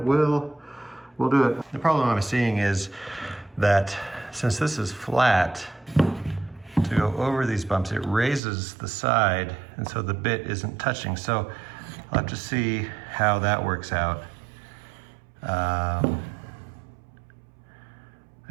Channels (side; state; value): left; drops out; at 8.4 s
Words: we'll do it. The problem I'm seeing is that since this is flat, to go over these bumps, it raises the side, and so the bit isn't touching. So I'll have to see how that works out. I